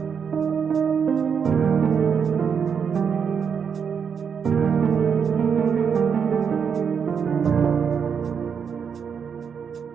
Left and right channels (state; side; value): quieter; left; 6.8 dB